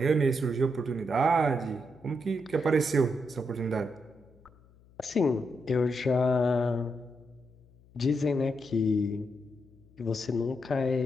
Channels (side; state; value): left; noise; hum, 27 dB below the sound